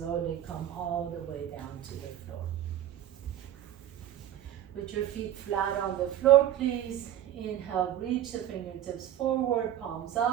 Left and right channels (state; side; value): quieter; left; 11.6 dB